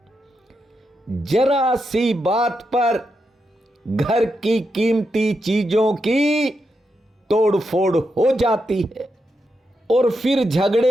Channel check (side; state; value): both; normal; correlation 0.85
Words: जरा सी बात पर घर की कीमती चीजों की तोड़फोड़ हो जाती है, और फिर